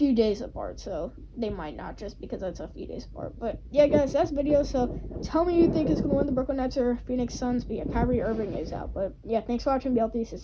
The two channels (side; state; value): both; identical; correlation 1.00